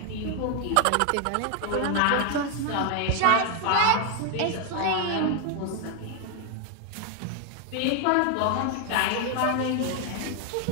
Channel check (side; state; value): both; different; correlation 0.01